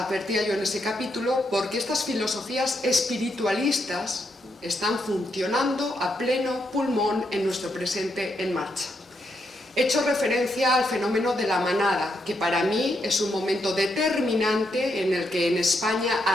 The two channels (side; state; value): both; normal; correlation 0.80